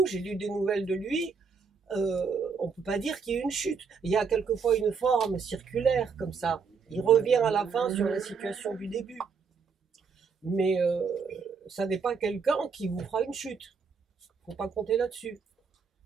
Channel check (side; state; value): left; quieter; 5.5 dB